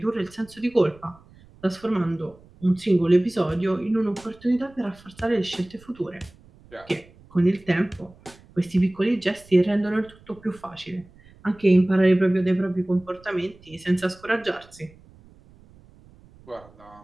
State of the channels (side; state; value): right; noise; rumble, 25 dB below the sound